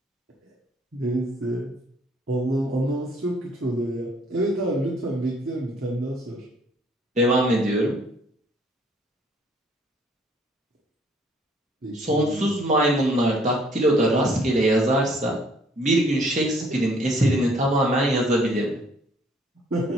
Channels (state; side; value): normal; both; correlation 0.61